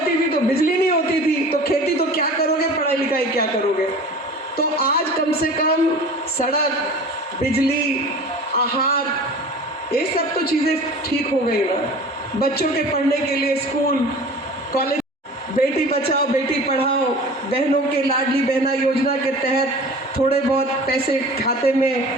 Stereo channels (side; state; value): both; normal; correlation 0.40